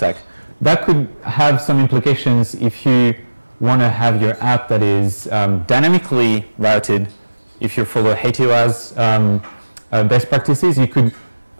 That could have some implications if you want to have your app that is dynamically routed. If you follow HTOA's best practices, you could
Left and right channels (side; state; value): both; inverted; correlation -1.00